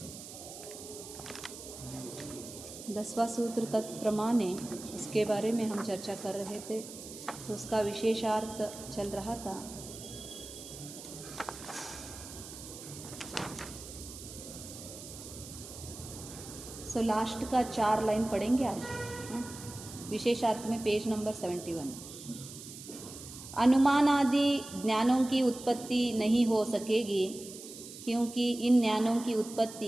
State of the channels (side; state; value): right; noise; hiss, 13 dB below the sound